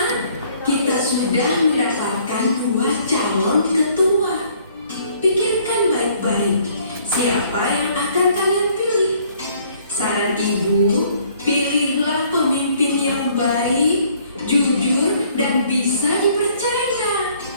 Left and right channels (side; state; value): both; inverted; correlation -0.61